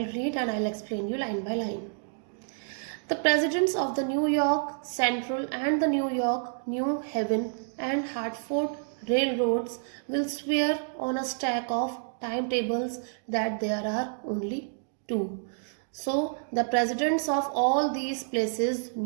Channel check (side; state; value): left; silent; digital silence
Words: read and I'll explain you line by line. The presidents of the New York Central and the New York, New Haven and Hartford railroads will swear on a stack of timetables that there are only two. So the presidents of all these places,